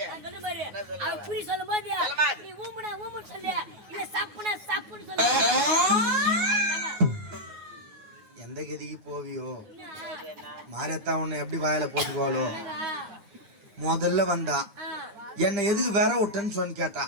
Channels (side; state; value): left; late; 9.5 ms